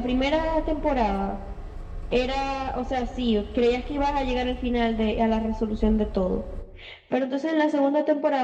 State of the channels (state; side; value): identical; both; correlation 1.00